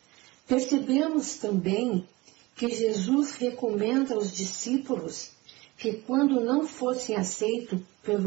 Percebemos também que Jesus recomenda aos discípulos que, quando não fossem aceitos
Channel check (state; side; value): quieter; left; 22.0 dB